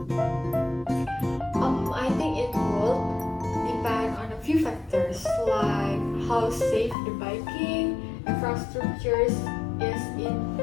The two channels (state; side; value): drops out; right; at 7.0 s